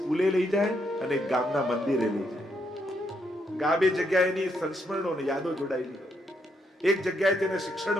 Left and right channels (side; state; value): both; normal; correlation 0.76